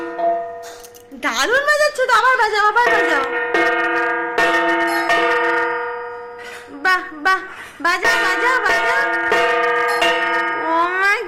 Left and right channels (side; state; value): both; identical; correlation 1.00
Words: দারুণ বাজাচ্ছ তো, আবার বাজাও আবার বাজাও। বাহ বাহ, বাজাও বাজাও বাজাও। ও মা